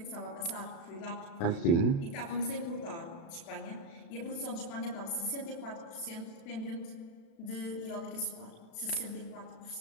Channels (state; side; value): late; right; 36 ms